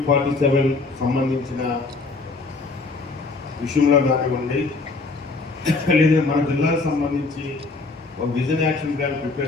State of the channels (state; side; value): quieter; right; 3.7 dB